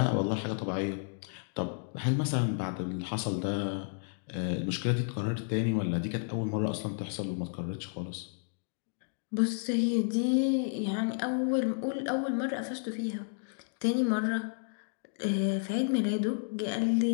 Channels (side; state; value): right; silent; digital silence